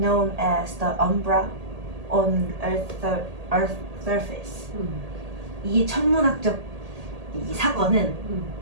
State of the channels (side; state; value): left; late; 1.8 ms